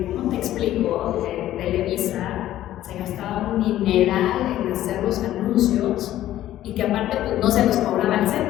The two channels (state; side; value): quieter; right; 13.4 dB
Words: ¿cómo te explico? Televisa se gastaba un dineral en hacer los anuncios y que aparte pues, no se los cobraba el